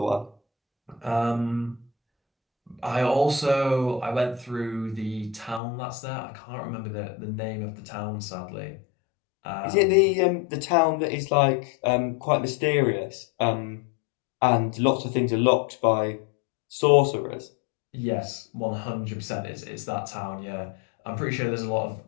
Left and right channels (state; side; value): drops out; right; at 5.6 s